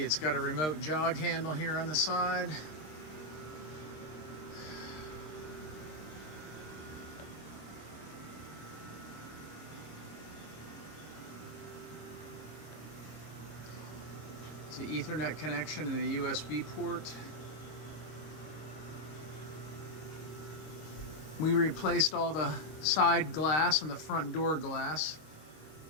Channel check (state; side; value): late; right; 26 ms